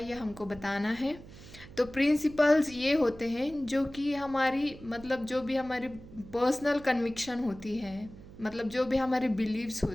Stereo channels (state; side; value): noise; right; hum, 18 dB below the sound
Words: ये हमको बताना है। तो प्रिंसिपल्स ये होते हैं जो कि हमारी मतलब जो भी हमारी पर्सनल कन्विक्शन होती है, मतलब जो भी हमारे बिलीव्स